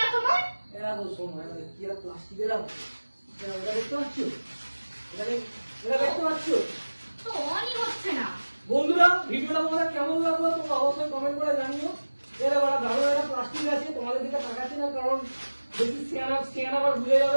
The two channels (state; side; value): inverted; both; correlation -1.00